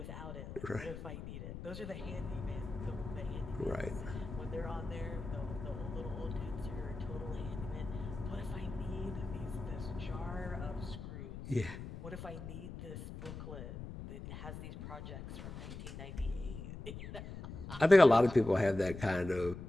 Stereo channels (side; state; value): left; noise; rumble, 9 dB below the sound